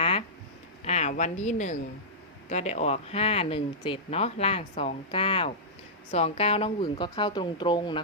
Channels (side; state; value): both; normal; correlation -0.14